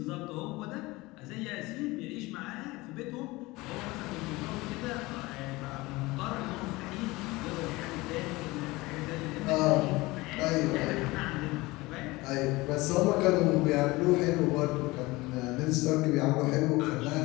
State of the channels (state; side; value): quieter; right; 21.4 dB